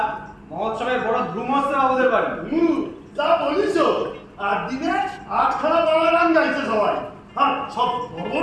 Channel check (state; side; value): identical; both; correlation 1.00